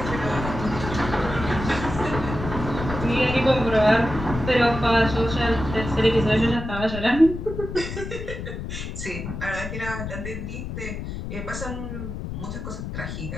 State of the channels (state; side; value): noise; left; rumble, 7 dB below the sound